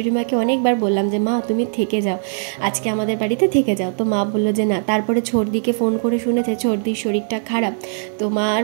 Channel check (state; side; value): silent; left; digital silence